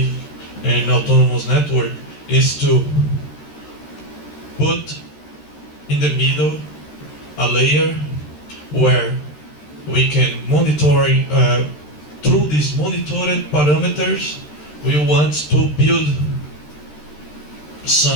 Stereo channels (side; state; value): right; late; 13 ms